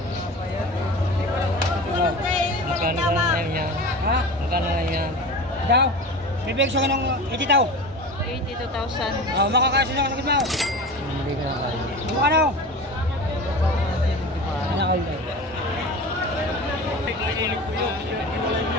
Magkano lang yan? Ha? Magkano lang yan? Daw? Bibig siya ng 80 daw. 82,000. Oh, makakasya na ako mo. Hindi ka na tayo. Ano? Ano kayo?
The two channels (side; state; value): both; normal; correlation 0.33